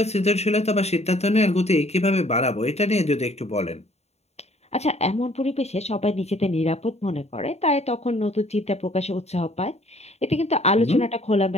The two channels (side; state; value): right; late; 0.31 ms